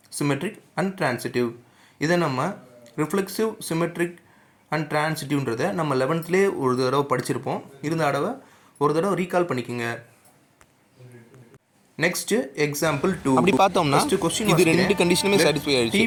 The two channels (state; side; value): identical; both; correlation 1.00